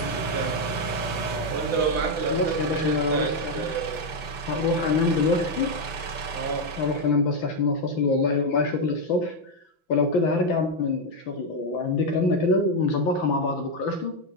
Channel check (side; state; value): right; late; 5.9 ms